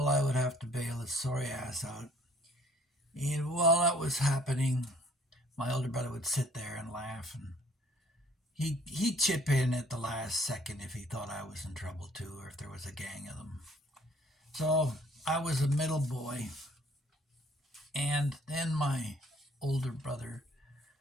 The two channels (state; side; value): normal; both; correlation 0.59